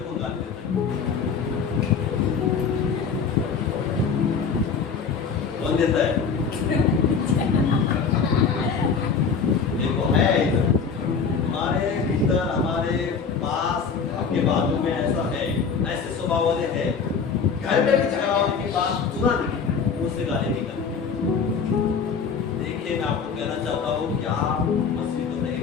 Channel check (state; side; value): quieter; right; 5.8 dB